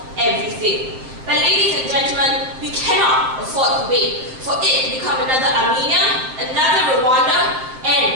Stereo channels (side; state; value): left; late; 7.7 ms